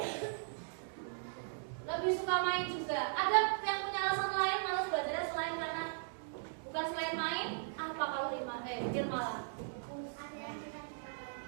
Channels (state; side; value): silent; left; digital silence